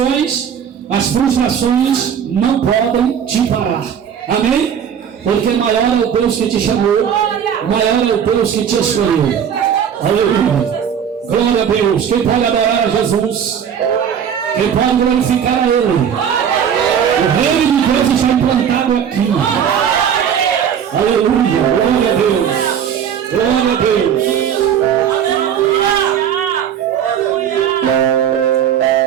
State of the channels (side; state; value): left; quieter; 8.3 dB